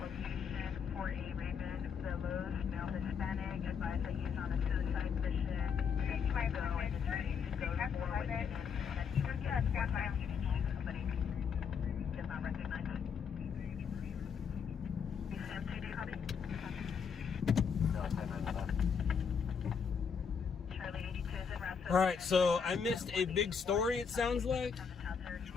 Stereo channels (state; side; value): quieter; right; 6.5 dB